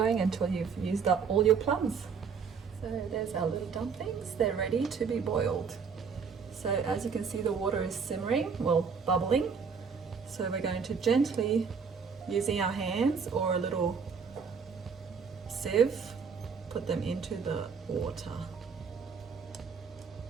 until you've used up all your plums. So there's our little dumplings, they're ready to be boiled. So as you can see, the water is simmering, well, bubbling. So we're going to gently, using our hands or a little sieve, put them into the water.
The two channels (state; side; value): quieter; left; 5.9 dB